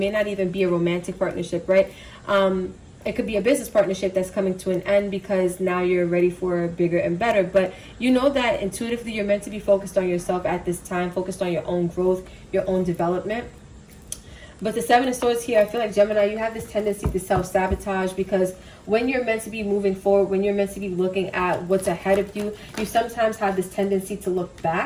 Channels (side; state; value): both; identical; correlation 1.00